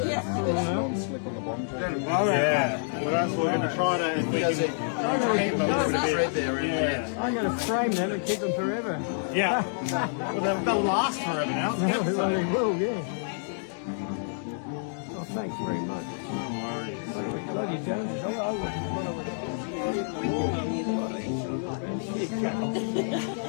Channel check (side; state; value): right; silent; digital silence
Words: Yeah. Well, that's what we're going to try to. If we can keep them a bit. Yeah. I'm going to frame them and keep them forever. Yeah. Well, they'll last forever now. Well, they will, yeah. Oh, thanks very much. No worries. Love you, Jones.